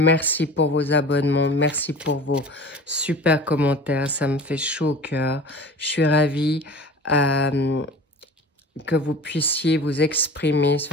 pour vos abonnements, merci pour vos super commentaires, ça me fait chaud au cœur. Je suis ravie que vous puissiez vous exprimer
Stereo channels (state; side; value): normal; both; correlation 0.39